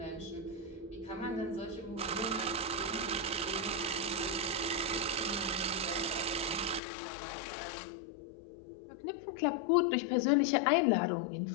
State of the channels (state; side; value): drops out; right; at 6.8 s